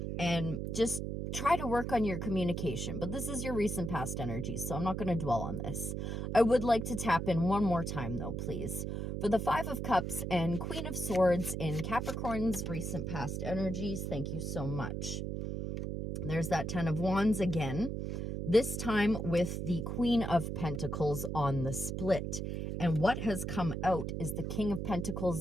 and just try to work on your communication. But this is your recent past energy, so I'm not going to dwell on this. I would like to tap in one more time, though, please, for the Five of Cups and Queen of Swords in Capricorn's recent past energies. Thank you so much. There's that Ten of Wands again, this time with the Queen of Pentacles on the split. And what has come out is the King of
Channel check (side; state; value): right; noise; hum, 3 dB below the sound